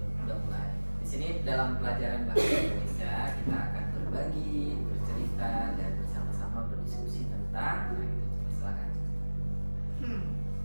Di sini dalam pelajaran bahasa Indonesia kita akan berbagi, bercerita dan bersama-sama berdiskusi tentang. Nah, itu silakan.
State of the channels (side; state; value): both; inverted; correlation -1.00